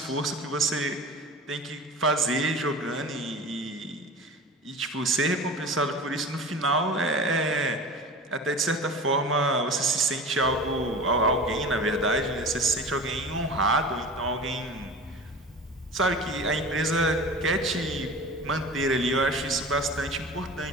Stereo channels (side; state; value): both; normal; correlation 0.35